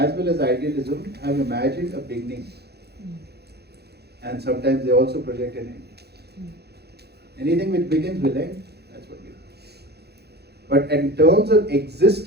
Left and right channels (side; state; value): left; late; 0.48 ms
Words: well as idealism have imagined a beginning, and sometimes they also project an end. Anything which begins will end, that's what we do. But in terms of